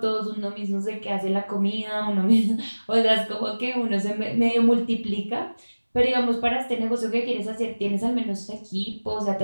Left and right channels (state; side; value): inverted; both; correlation -1.00